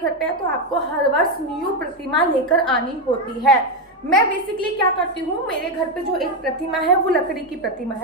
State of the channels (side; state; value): both; normal; correlation 0.08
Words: पे है तो आपको हर वर्ष न्यू प्रतिमा लेकर आनी होती है। मैं बेसिकली क्या करती हूँ, मेरे घर पे जो एक प्रतिमा है वो लकड़ी की प्रतिमा